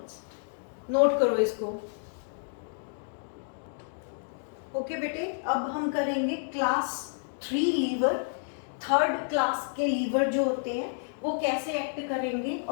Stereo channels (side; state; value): right; silent; digital silence